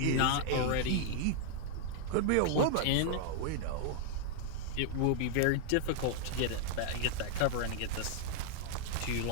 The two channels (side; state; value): both; different; correlation -0.01